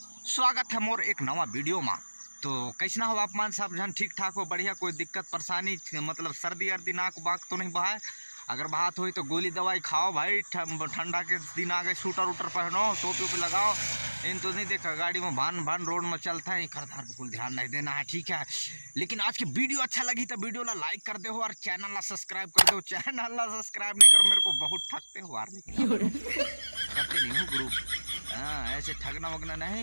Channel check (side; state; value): both; inverted; correlation -1.00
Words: स्वागत है मोर एक नवा वीडियो में। तो कैसना हो आप मान सब जन ठीक ठाक हो, बढ़िया, कोई दिक्कत परेशानी मतलब सर्दी अर्दी नाक बाक तो नहीं बहाए। अगर बात हुई तो गोली दवाई खाओ भाई, ठंडा के दिन आ गए, शूटर वूटर पहनो, टोपी वोपी लगाओ। इन तो नहीं देखा गाड़ी में भान रोड में चलता है, खरधार बिल्कुल ध्यान नहीं देना है, ठीक है। लेकिन आज की वीडियो अच्छा लगी तो वीडियो ला लाइक कर दे हो और चैनल ला सब्सक्राइब कर दो। चैनल ला सब्सक्राइब नहीं करो, मेरे को बहुत ठगते हो यार, लेकिन करते नहीं हूँ ग्रुप। हाँ, ऐसे ठगना वगना